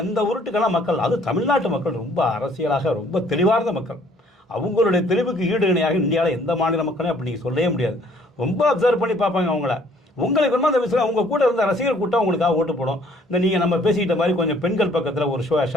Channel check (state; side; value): normal; both; correlation 0.60